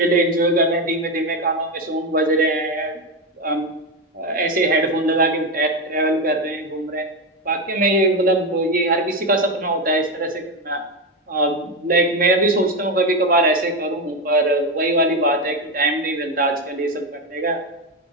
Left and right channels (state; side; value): normal; both; correlation 0.12